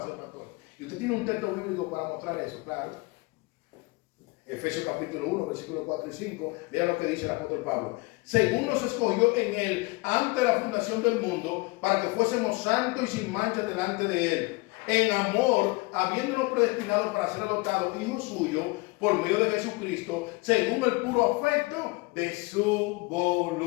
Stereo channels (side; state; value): right; quieter; 24.8 dB